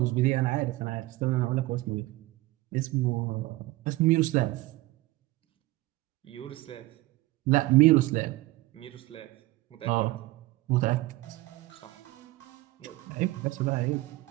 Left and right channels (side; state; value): left; quieter; 19.3 dB